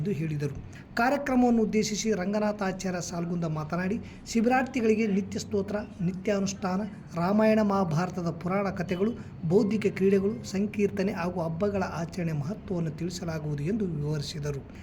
ಹೇಳಿದರು. ಕಾರ್ಯಕ್ರಮವನ್ನು ಉದ್ದೇಶಿಸಿ ರಂಗನಾಥಾಚಾರ್ಯ ಸಾಲ್ಗುಂದ ಮಾತನಾಡಿ, ಶಿಬಿರಾರ್ಥಿಗಳಿಗೆ ನಿತ್ಯ ಸ್ತೋತ್ರ, ನಿತ್ಯಾನುಷ್ಠಾನ, ರಾಮಾಯಣ ಮಹಾಭಾರತದ ಪುರಾಣ ಕಥೆಗಳು, ಬೌದ್ಧಿಕ ಕ್ರೀಡೆಗಳು, ಸಂಕೀರ್ತನೆ ಹಾಗೂ ಹಬ್ಬಗಳ ಆಚರಣೆ ಮಹತ್ವವನ್ನು ತಿಳಿಸಲಾಗುವುದು ಎಂದು ವಿವರಿಸಿದರು.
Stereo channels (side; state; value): both; identical; correlation 1.00